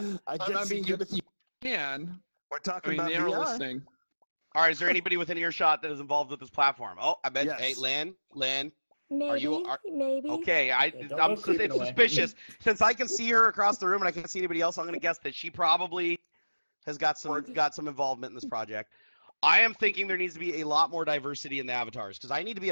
I I guess mean, you you can. We're I talking mean, about they are VR. listening. All right. Is there anybody within earshot that is involved with this platform? Oh, I bet. Yes. Hey, Lynn. Maybe. Maybe. Okay. don't go I'm creeping away. suspicious. Since I can see her across the room and I can't see anybody else, I'm going to guess that she probably has got some involvement in this project. I am thinking there needs to be a lot more diversity in the avatars because I need to be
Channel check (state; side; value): inverted; both; correlation -1.00